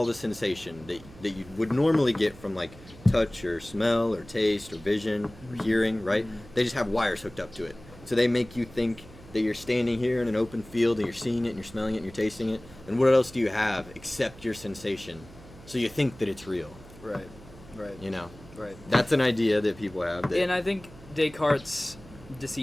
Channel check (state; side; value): noise; right; hum, 20 dB below the sound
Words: the sensation that you would normally get from like touch or smell or taste or vision or hearing, right? They just have wires hooked up to it. So they make you think that you're standing here in an open field and you're seeing it and you're smelling it and you're tasting it. And what else do you have except your sensation? So you think that it's real. Right. Right. That's an idea that people have. And I think Descartes'